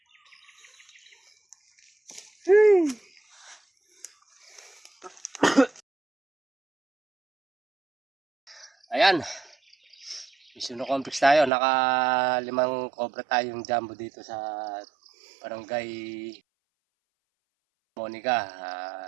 Ayan. Mission complex tayo. Naka-5 cobra tayong jumbo dito sa Barangay Monica.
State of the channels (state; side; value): drops out; left; at 11.5 s